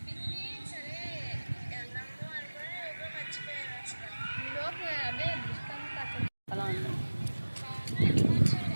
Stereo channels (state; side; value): inverted; both; correlation -1.00